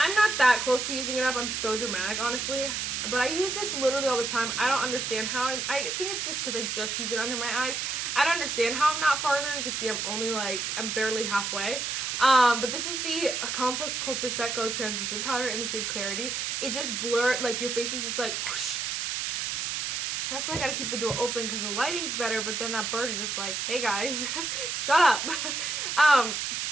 not that close to using it up. I'm so dramatic, honestly. But I use this literally all the time. I don't understand how. I think it's just because I just use it under my eyes. I don't understand how I'm not farther. You can see I'm barely halfway. But this is the Complex Culture Set Go Translucent Powder in the shade Clarity. It just blurs, like your face is just like whoosh. That's why I gotta keep the door open because the lighting's better, but then that bird is just like, hey guys, shut up.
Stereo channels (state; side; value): noise; right; hiss, 2 dB below the sound